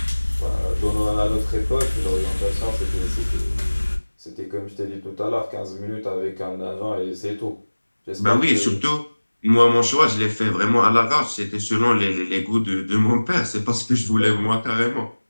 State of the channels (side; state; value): both; inverted; correlation -1.00